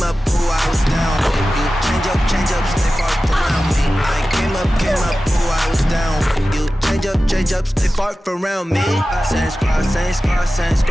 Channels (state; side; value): normal; both; correlation 0.95